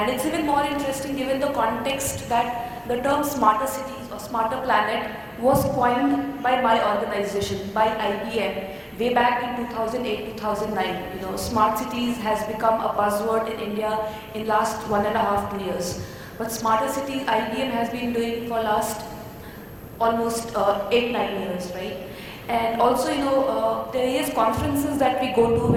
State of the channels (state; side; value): identical; both; correlation 1.00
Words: it's even more interesting given the context that the term smarter cities or smarter planet was coined by my organization, by IBM, way back in 2008-2009. Smart cities has become a buzzword in India in last 1.5 2 years. But smarter cities, IBM has been doing for last almost 8-9 years, right? And also, there is conferences that we go to